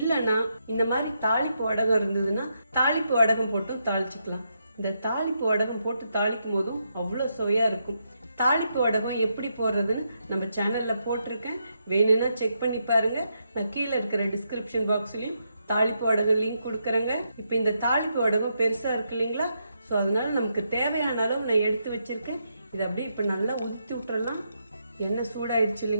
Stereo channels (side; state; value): both; inverted; correlation -0.81